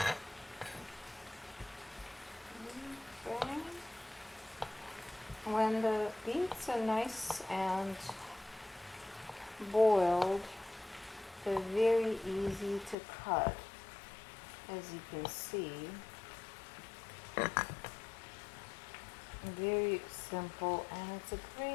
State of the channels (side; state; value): right; drops out; at 13.0 s